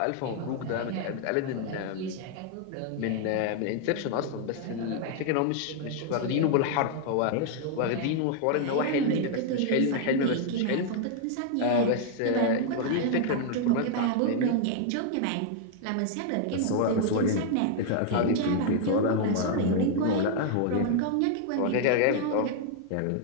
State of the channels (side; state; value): both; different; correlation 0.00